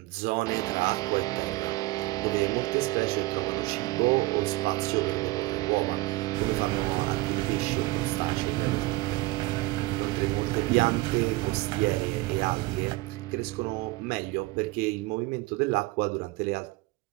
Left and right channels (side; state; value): left; quieter; 21.0 dB